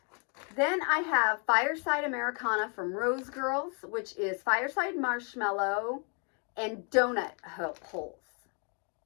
Then I have Fireside Americana from Rose Girls, which is Fireside Marshmallow and Donut Holes.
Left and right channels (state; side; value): quieter; right; 38.2 dB